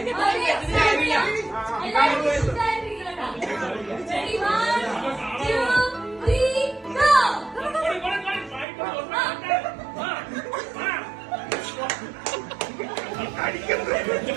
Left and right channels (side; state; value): left; drops out; at 8.7 s